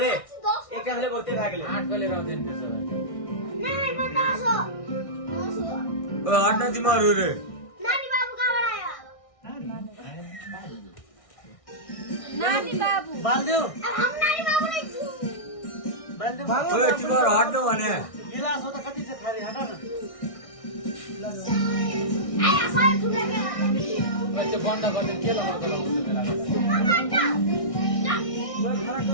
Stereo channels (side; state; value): right; late; 1.6 ms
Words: एक हमले बहुते भाग ले 8 को लिएर आउँदैन त्यसो भए नहीं मैं 10 हो हट्न तिमीहरू रे नानी बाबू कहाँबाट आयो नानी बाबू बाल्दियो अब हम नानी बाबू नहीं छु बाल्दियो ओए तिमीहरू हट्नु भने गिलास हो त कति छ खाली हटा न आया सारे ठुले के त्यो बन्द गर्ने के लगाउँछ बेला